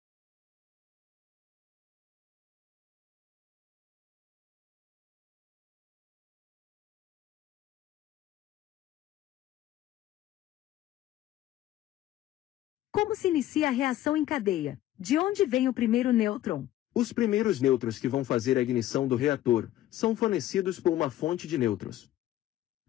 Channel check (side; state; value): right; quieter; 13.7 dB